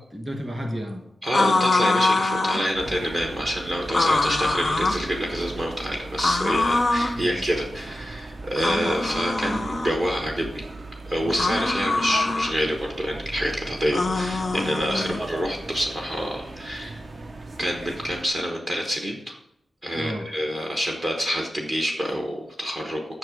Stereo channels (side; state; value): both; normal; correlation 0.92